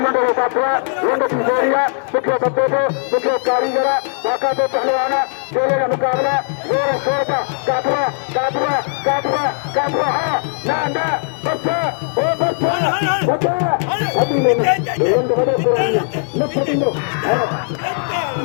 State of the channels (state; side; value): silent; right; digital silence